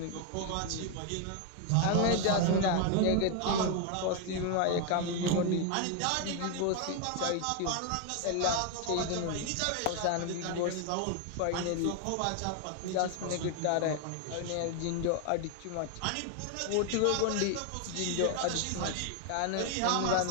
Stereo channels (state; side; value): different; both; correlation 0.01